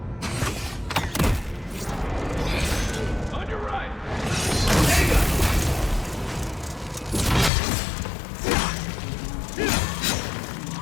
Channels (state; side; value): drops out; right; at 7.5 s